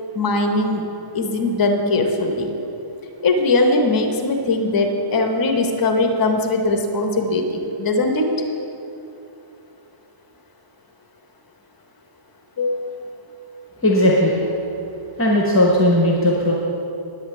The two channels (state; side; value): late; left; 1.0 ms